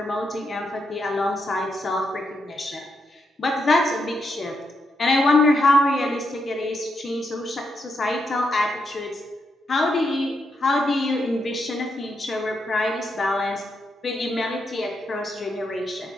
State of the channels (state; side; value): normal; both; correlation 0.81